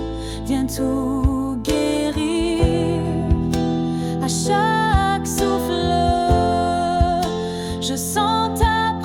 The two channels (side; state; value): both; identical; correlation 1.00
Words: tout guérir. À chaque souffle, je sens ta